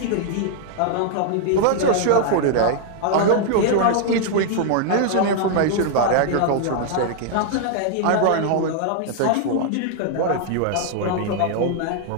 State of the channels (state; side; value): different; both; correlation 0.00